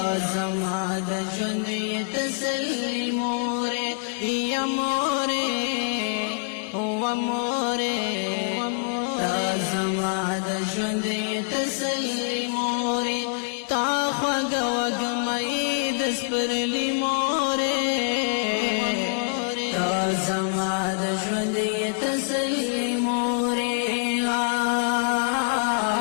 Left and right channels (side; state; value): right; silent; 62 dB below the other